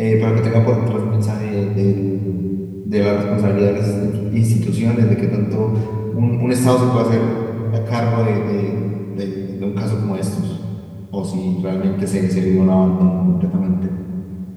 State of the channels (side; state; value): both; identical; correlation 1.00